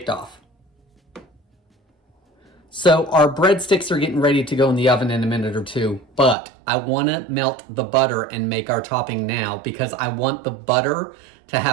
off. So our breadsticks are getting ready to go in the oven in a minute or two, but I want to melt the butter and make our topping now because I want the butter to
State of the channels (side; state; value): left; drops out; at 6.4 s